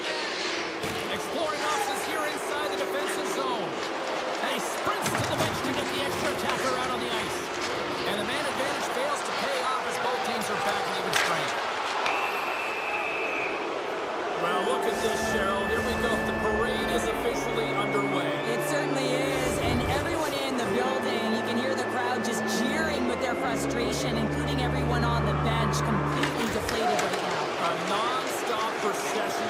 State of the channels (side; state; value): both; identical; correlation 1.00